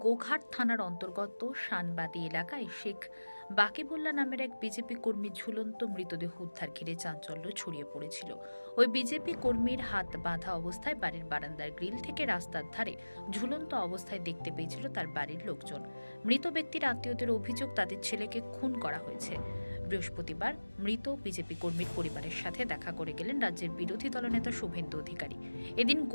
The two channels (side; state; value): both; inverted; correlation -1.00